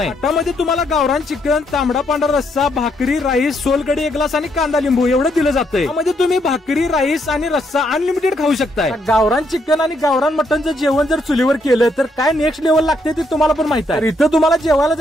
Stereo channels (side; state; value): both; normal; correlation 0.74